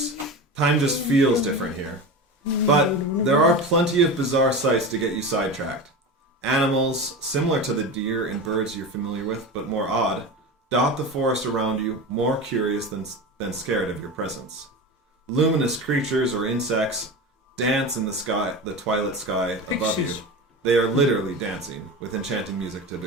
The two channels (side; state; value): both; normal; correlation 0.27